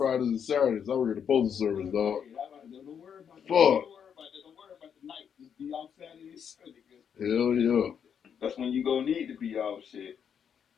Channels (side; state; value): right; quieter; 7.8 dB